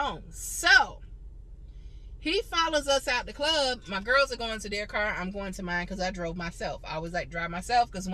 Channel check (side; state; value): both; identical; correlation 1.00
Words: So he follows us out the club. My girls are going to their car. I'm going to mine because I drove myself. I always like to drive myself because